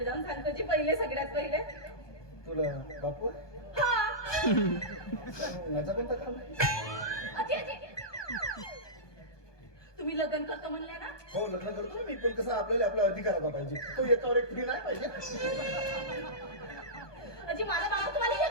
जाऊन सांगतो जी पहिले सगळ्यात पहिले. तुला बापू हा माझा कोणता काम आहे? अजी अजी तुम्ही लग्न करतो म्हणले ना. हो लग्न करतो ना मी पण कसं आपल्याला आपला अधिकार पाहिजे तो एकावर एक फ्री नाही पाहिजे. अजी माझा बाबा तुम्हाला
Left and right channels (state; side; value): late; right; 1.2 ms